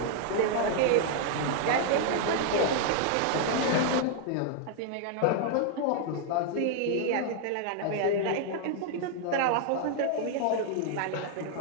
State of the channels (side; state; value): both; different; correlation 0.00